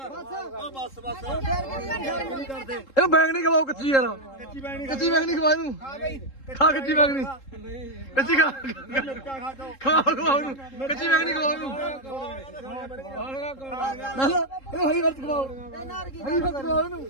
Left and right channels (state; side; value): late; right; 3.7 ms